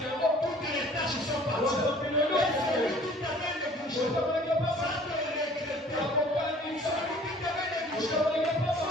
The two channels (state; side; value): normal; both; correlation 0.52